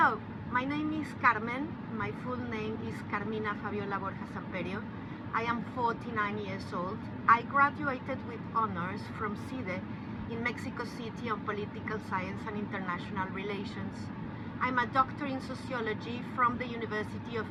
my name is Carmen. My full name is Carmina Fabiola Borja Samperio. I am 49 years old. I graduated with honors from CIDE in Mexico City on Political Science and International Relations. I'm a doctor in sociology from the University of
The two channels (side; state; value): both; identical; correlation 1.00